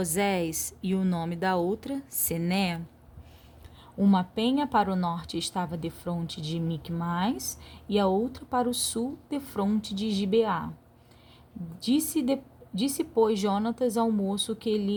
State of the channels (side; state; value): both; identical; correlation 1.00